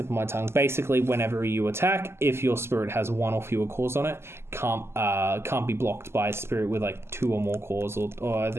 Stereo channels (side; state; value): left; late; 0.12 ms